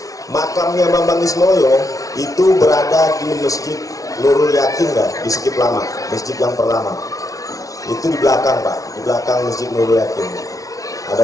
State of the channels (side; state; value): right; late; 0.17 ms